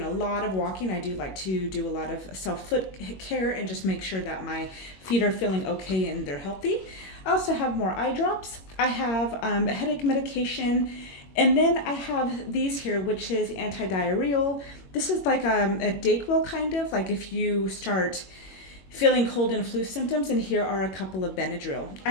a lot of walking, I do like to do a lot of self-foot care and just make sure that my feet are feeling okay and they're healthy. I also have more eye drops. I have a headache medication, and then I have these here, which is Anti-Diarrheal. This is like a Dayquil kind of, like if you start feeling cold and flu symptoms, and here are a couple of Benadryl.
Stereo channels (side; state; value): right; late; 21 ms